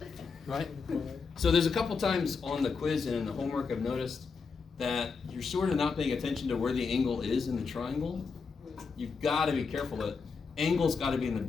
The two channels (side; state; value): right; quieter; 5.1 dB